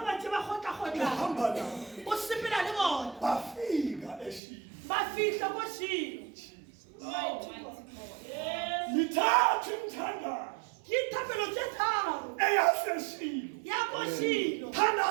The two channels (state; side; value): drops out; left; at 4.4 s